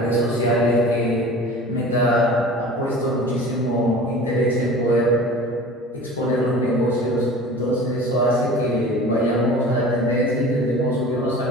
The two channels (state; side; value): normal; both; correlation 0.40